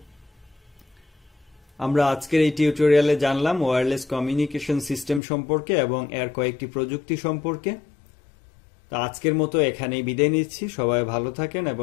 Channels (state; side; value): drops out; right; at 5.2 s